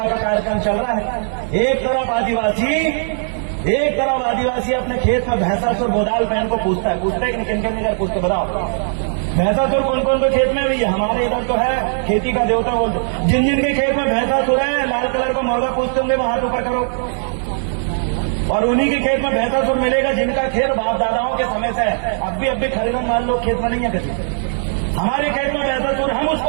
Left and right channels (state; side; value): silent; left; digital silence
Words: का कार्यक्रम चल रहा है। एक तरफ आदिवासी अपने खेत में भैंसासुर बोदाल पहन को पूछता है कि किन किन पूछते बताओ। भैंसासुर कौन कौन के खेत में भी है? हमारे इधर तो है खेती का देवता बोलते। जिन जिन के खेत में भैंसासुर है, लाल कलर का मुर्गा पूछते होंगे, वो हाथ ऊपर करो। और उन्हीं के खेत में भैंसासुर मिलेगा जिनका खेत बाप दादाओं के समय से है। अब भी खरीदन मान लो खेत में नहीं है किसी। हमारे खेत में भैंसासुर, हम